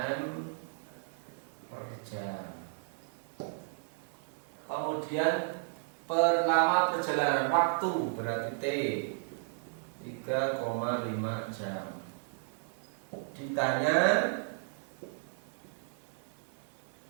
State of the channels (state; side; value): silent; left; digital silence